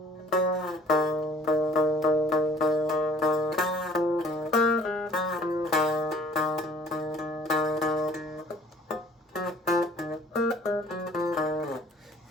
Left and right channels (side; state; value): both; normal; correlation 0.53